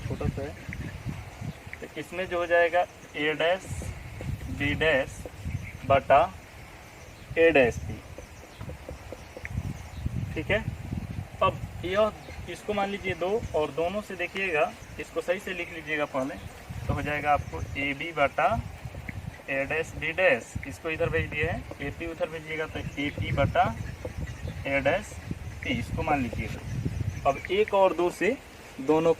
छोटा सा है, तो इसमें जो हो जाएगा ए डैश बी डैश बटा ए डैश पी, ठीक है। अब यह इसको मान लीजिए दो और दोनों से देखिएगा, इसको सही से लिख लीजिएगा पहले, तो हो जाएगा आपको ए बी बटा ए डैश बी डैश, इसको इधर भेज दिए हैं, ए पी उधर भेजिएगा तो ए पी बटा ए डैश पी, इसको मान लीजिएगा। अब एक और दो से दोनों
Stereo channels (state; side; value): identical; both; correlation 1.00